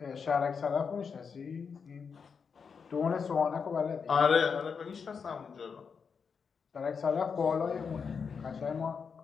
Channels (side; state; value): right; quieter; 6.0 dB